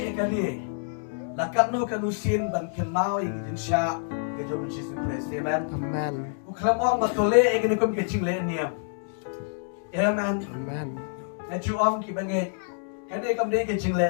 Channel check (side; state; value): right; silent; digital silence